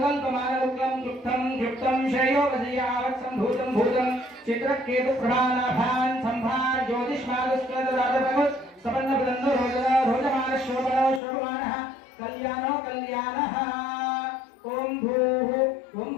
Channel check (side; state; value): right; drops out; at 11.2 s